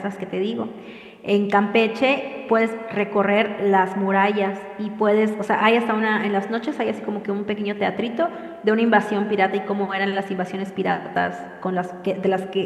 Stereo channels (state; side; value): identical; both; correlation 1.00